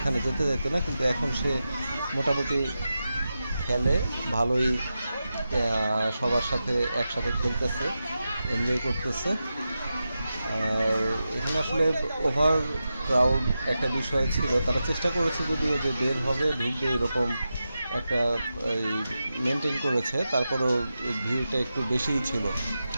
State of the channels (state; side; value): inverted; both; correlation -0.91